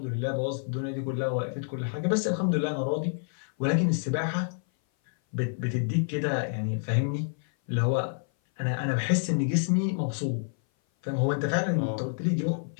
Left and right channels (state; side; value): silent; right; 57 dB below the other